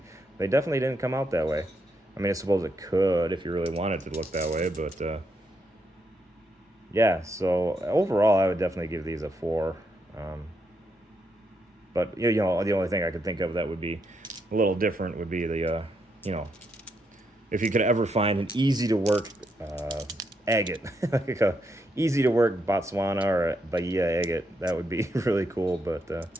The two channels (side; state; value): both; normal; correlation 0.79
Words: They definitely didn't come out that way. I mean, I suppose it could if you really wanted to look that way, but yeah. So overall, I would definitely give these a 4. Um, but you know, the only thing I could think of that would be a little different would be the you know, if you could ever find an easy to work agate, like a easy to work Botswana or a Bahia agate, that would be really cool. But